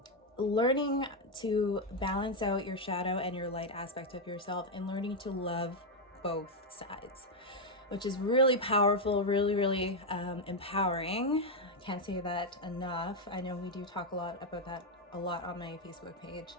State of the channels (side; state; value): both; normal; correlation 0.02